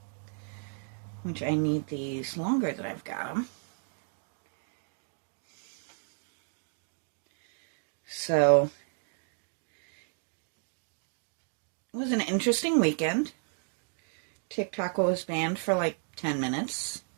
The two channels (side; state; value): left; silent; 56 dB below the other